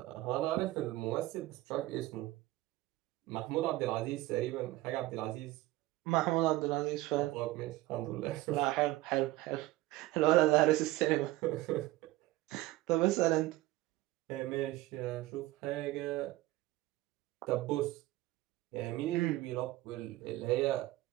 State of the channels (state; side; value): quieter; left; 17.7 dB